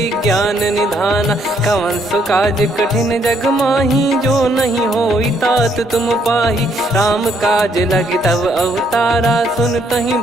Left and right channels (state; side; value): normal; both; correlation 0.70